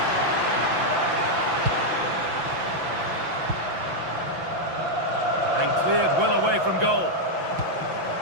And cleared well away from goal.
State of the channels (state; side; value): late; left; 5.9 ms